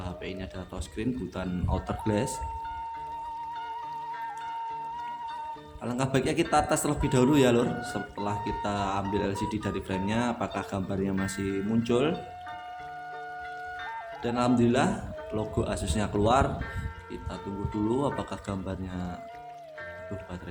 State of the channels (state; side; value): identical; both; correlation 1.00